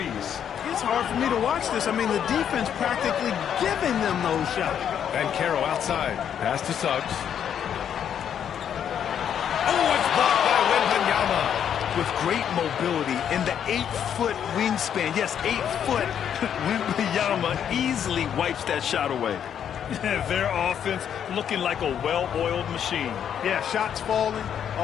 It's hard for me to watch this. I mean, the defense practically giving them those shots. Banchero outside. Pass to Suggs. Oh, it's blocked by Wembanyama. With great mobility in the 8-foot wingspan. Yes, 8 foot. Wembanyama easily wipes that shot away. Their offense looking like a well-oiled machine. Yeah, shots falling,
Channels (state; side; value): quieter; right; 8.9 dB